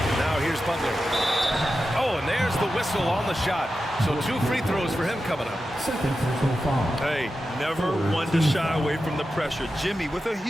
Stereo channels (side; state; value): both; normal; correlation 0.91